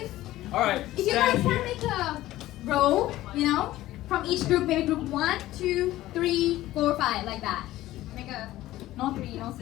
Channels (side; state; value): right; quieter; 15.6 dB